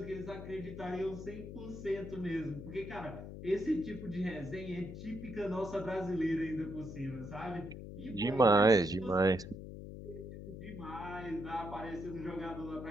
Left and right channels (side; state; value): left; noise; hum, 10 dB below the sound